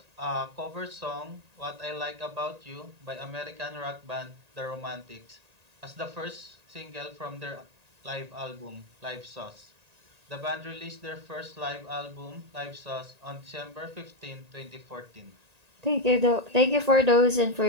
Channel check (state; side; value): late; left; 1.8 ms